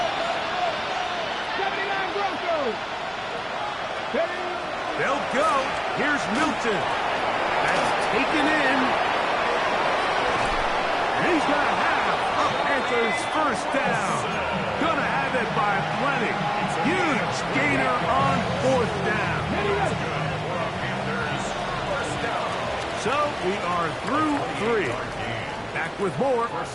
79 Broncos. They'll go. Here's Milton. That's taken in. And he's going to have a Panthers first down. Going to have it by plenty. Huge gainer on 4th down. So we are through 3. Back with more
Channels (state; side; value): identical; both; correlation 1.00